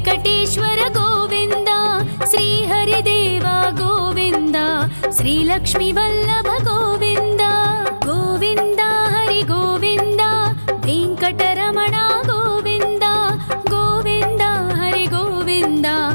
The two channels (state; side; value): inverted; both; correlation -1.00